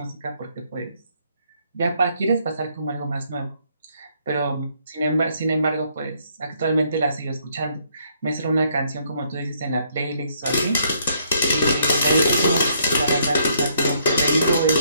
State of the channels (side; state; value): both; inverted; correlation -0.69